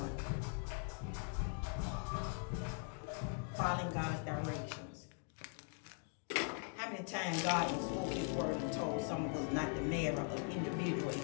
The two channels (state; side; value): silent; right; 50 dB below the other